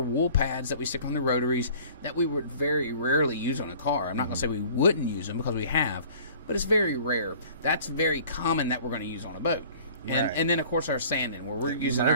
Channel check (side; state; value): both; inverted; correlation -0.49